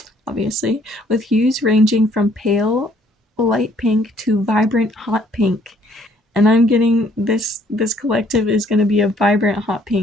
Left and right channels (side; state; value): both; normal; correlation 0.63